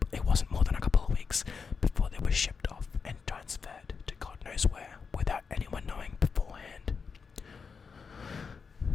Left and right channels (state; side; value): quieter; right; 5.5 dB